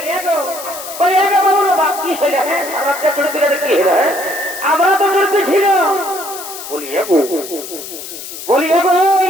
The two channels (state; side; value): noise; left; hiss, 11 dB below the sound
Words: কি হলে হ্যাঁ সারা রাত্রে চুরিতে কি হলো হ্যাঁ আমরা তো চলতে ছিল বলি এগো